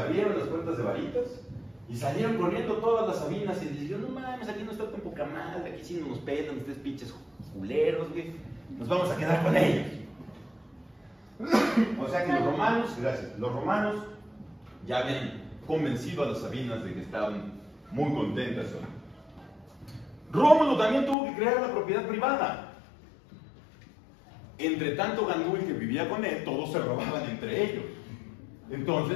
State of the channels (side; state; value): right; drops out; at 21.2 s